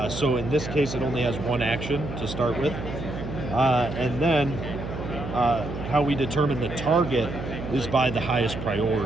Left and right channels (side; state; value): right; noise; hum, 8 dB below the sound